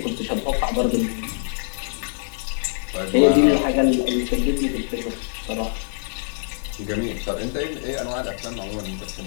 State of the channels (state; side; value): silent; right; digital silence